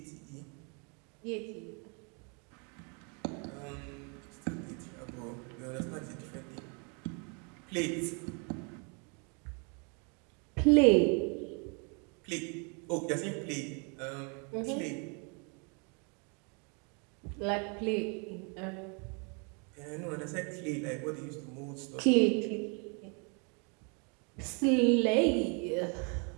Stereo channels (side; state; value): left; quieter; 35.3 dB